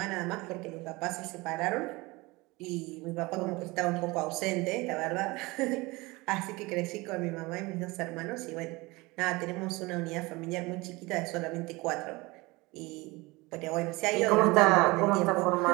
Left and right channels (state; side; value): quieter; left; 23.0 dB